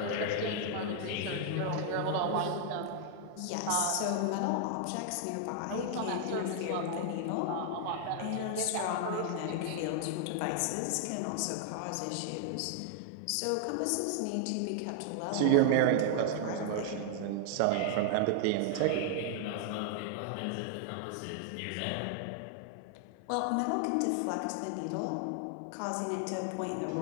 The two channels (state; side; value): different; both; correlation 0.00